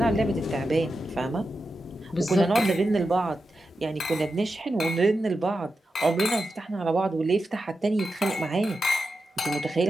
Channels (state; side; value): normal; both; correlation 0.90